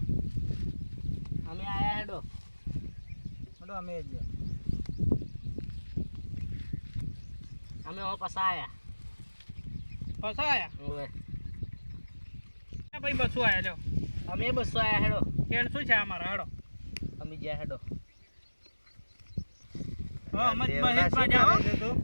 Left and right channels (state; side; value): inverted; both; correlation -1.00